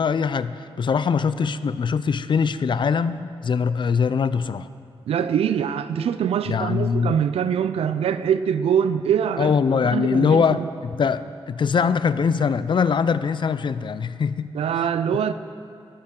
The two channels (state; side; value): normal; both; correlation 0.60